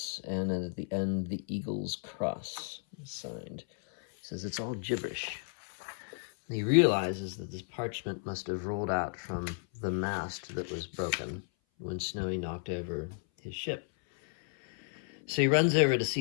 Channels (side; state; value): right; silent; 56 dB below the other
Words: and at the end, the eagle's cross is signed. He says it's all gibberish. And he realizes that this parchment must have rolled out from the mast that was broken when Snowy knocked over his ship. So he runs over to